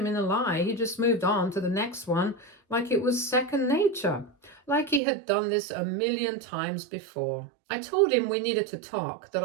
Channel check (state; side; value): drops out; left; at 5.0 s